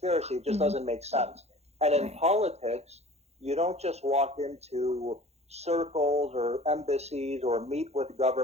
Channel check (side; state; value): left; late; 0.31 ms